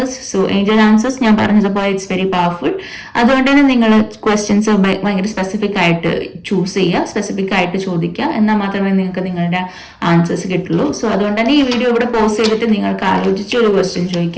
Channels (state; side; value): identical; both; correlation 1.00